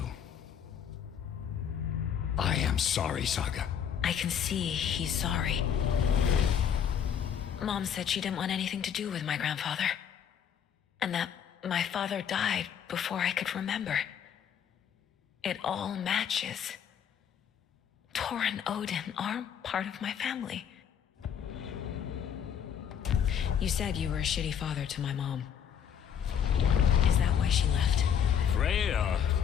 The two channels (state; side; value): quieter; right; 8.4 dB